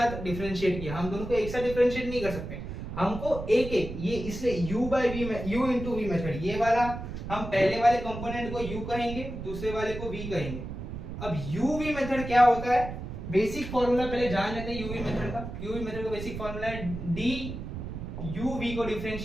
डिफरेंशिएट किया, हम दोनों को एक साथ डिफरेंशिएट नहीं कर सकते। हमको एक एक ये इसलिए u बाय v में u इंटू वी मेथड, ये वाला हम पहले वाले कंपोनेंट को u कहेंगे, दूसरे वाले को v कहेंगे। अब uv मेथड क्या होता है? बेसिक फॉर्मूला पहले जान लेते हैं uv मेथड का। uv मेथड का बेसिक फॉर्मूला है d uv को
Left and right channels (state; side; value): noise; right; rumble, 8 dB below the sound